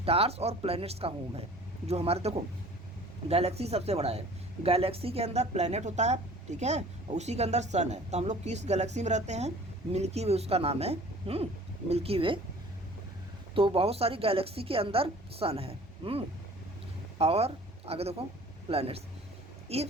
और प्लैनेट्स का होम है। जो हमारे देखो गैलेक्सी सबसे बड़ा है, गैलेक्सी के अंदर प्लैनेट होता है, ठीक है, और उसी के अंदर सन है, तो हम लोग किस गैलेक्सी में रहते हैं, मिल्की वे उसका नाम है, मिल्की वे। तो बहुत सारी गैलेक्सी के अंदर सन है, और आगे देखो planets,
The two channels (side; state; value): both; normal; correlation 0.48